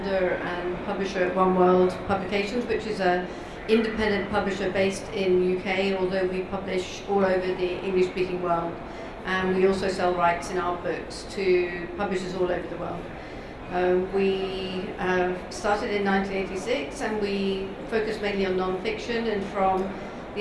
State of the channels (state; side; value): identical; both; correlation 1.00